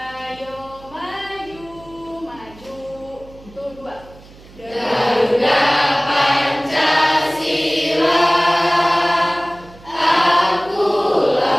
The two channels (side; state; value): right; noise; hum, 22 dB below the sound